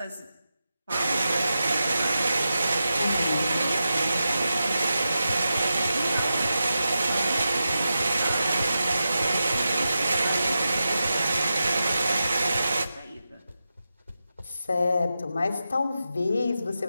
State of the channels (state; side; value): inverted; both; correlation -0.90